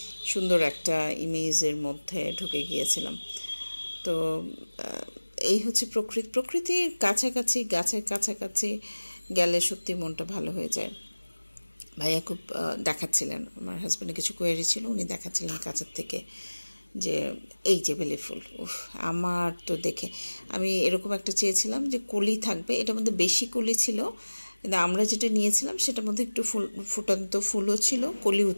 সুন্দর একটা ইমেজের মধ্যে ঢুকে গিয়েছিলাম। তো এই হচ্ছে প্রকৃতির কাছাকাছি, গাছের কাছাকাছি গেলে সত্যি মনটা ভালো হয়ে যায়। ভাইয়া খুব দেখাচ্ছিলেন, আমার হাজব্যান্ডের কিছু কোয়েরি ছিল, উনি দেখাচ্ছিলেন কাছের থেকে যে এই যে বেলি ফুল, উফ আমার তো দেখে আমি এরকম একটা চেয়েছিলাম যে কলি থাকবে, এটার মধ্যে বেশি কলি ছিল, কিন্তু আমরা যেটা নিয়েছিলাম সেটার মধ্যে একটু ফুটান্ত ফুলও ছিল, কলিও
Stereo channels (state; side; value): inverted; both; correlation -1.00